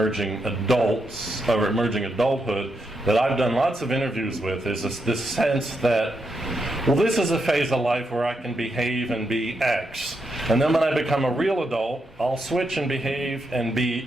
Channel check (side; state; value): both; normal; correlation 0.82